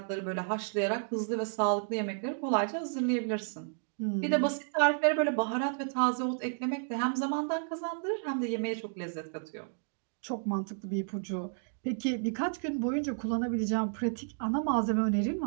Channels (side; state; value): left; silent; digital silence